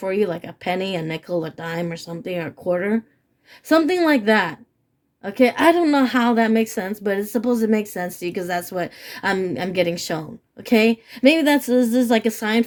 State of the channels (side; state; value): both; identical; correlation 1.00